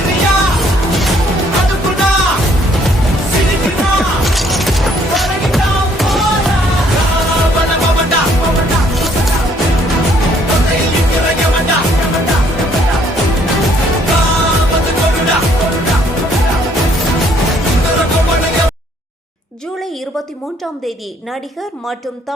ஜூலை 23ஆம் தேதி நடிகர் மற்றும்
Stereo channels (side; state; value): both; normal; correlation 0.64